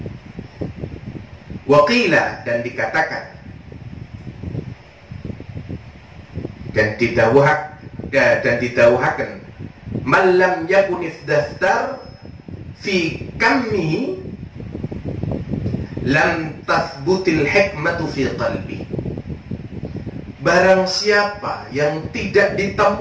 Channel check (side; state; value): both; identical; correlation 1.00